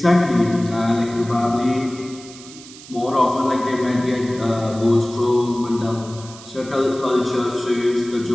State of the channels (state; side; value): noise; right; hiss, 18 dB below the sound